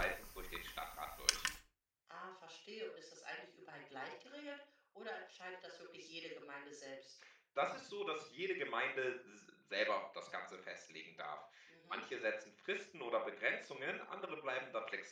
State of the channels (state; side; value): identical; both; correlation 1.00